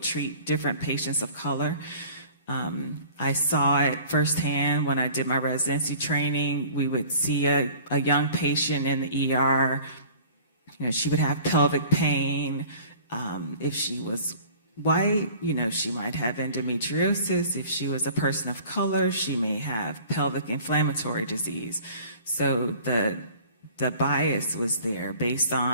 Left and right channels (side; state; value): both; inverted; correlation -0.47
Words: different patients of color. I saw it firsthand when I did my residency training. We would see a young patient in the ER. She would have pelvic pain. If she was white, she might have endometriosis. If she was a person of color, she may have pelvic inflammatory disease. So the bias was there based